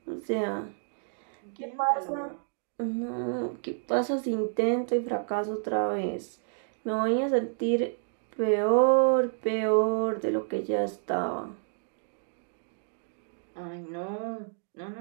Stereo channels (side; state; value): left; silent; digital silence